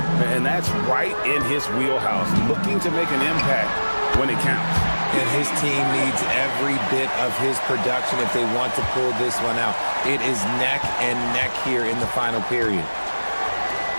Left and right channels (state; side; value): inverted; both; correlation -1.00